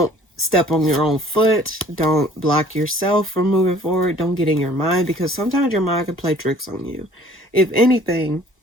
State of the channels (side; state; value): both; normal; correlation 0.54